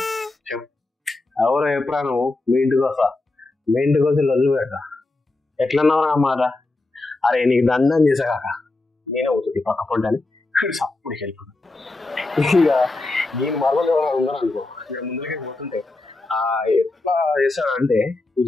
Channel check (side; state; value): right; quieter; 3.1 dB